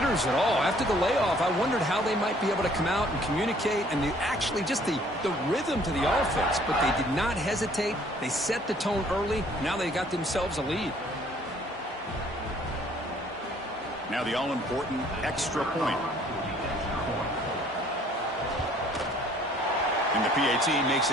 at all. After the layoff, I wondered how they might be able to come out and communicate and actually just the rhythm to the offense. But they did not hesitate. They set the tone early. Now they got themselves a lead. Now the all-important extra point. And the PAT makes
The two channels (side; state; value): both; normal; correlation 0.59